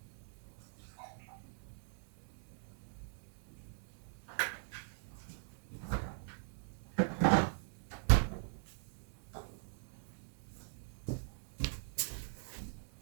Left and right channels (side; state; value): left; silent; digital silence